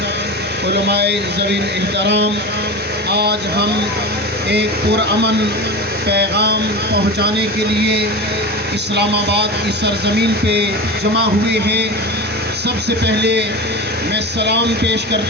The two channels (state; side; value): normal; both; correlation 0.27